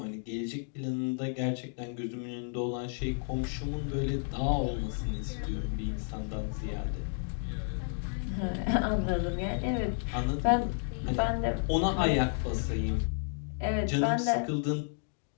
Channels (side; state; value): right; silent; 56 dB below the other